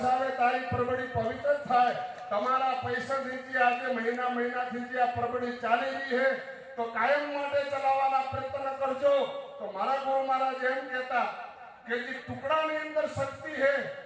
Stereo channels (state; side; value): identical; both; correlation 1.00